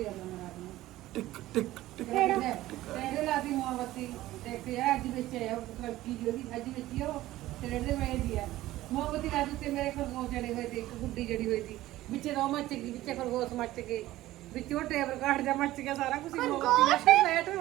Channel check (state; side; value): quieter; left; 15.9 dB